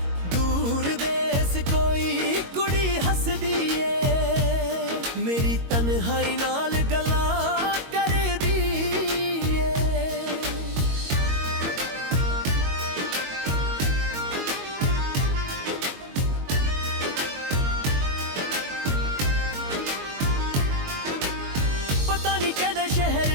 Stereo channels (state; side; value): late; left; 22 ms